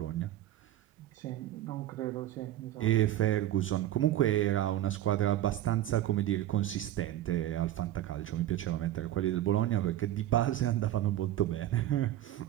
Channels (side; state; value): left; quieter; 13.3 dB